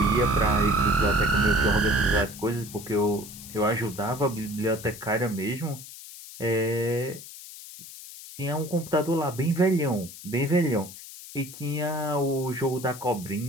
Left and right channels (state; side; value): noise; left; hiss, 15 dB below the sound